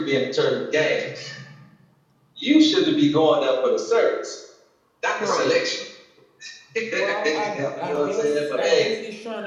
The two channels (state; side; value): identical; both; correlation 1.00